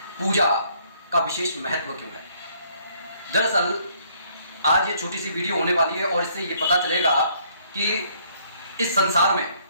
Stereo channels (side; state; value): both; inverted; correlation -0.65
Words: पूजा का विशेष महत्व क्यों है। दरअसल आज ये छोटी सी वीडियो होने वाली है और इससे ये पता चलेगा कि इस संसार में